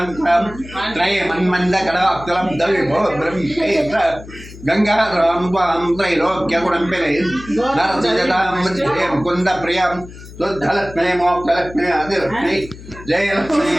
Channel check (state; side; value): noise; left; hum, 16 dB below the sound